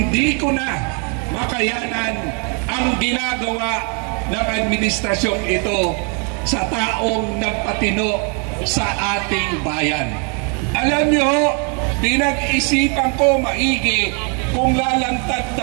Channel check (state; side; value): quieter; left; 37.6 dB